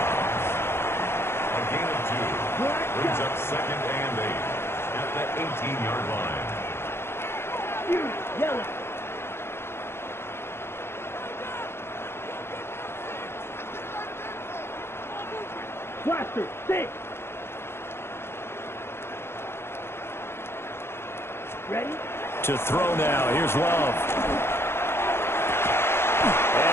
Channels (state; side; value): late; right; 0.12 ms